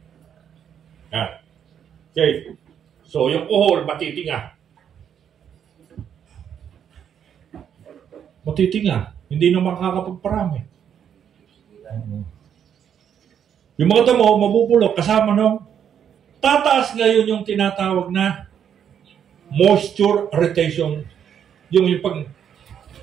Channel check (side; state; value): left; quieter; 8.6 dB